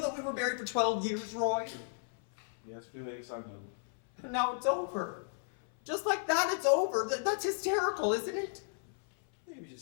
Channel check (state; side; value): silent; right; 55 dB below the other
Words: that we were married for 12 years, Roy? Yes, Felix, I know. Now it's over. Just like that, it's over. That's hysterical, isn't it? Maybe